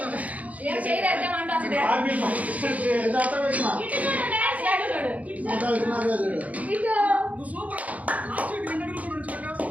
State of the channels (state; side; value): late; left; 0.071 ms